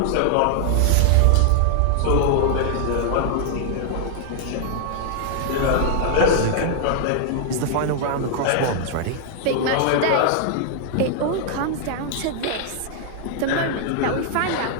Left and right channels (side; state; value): both; different; correlation -0.01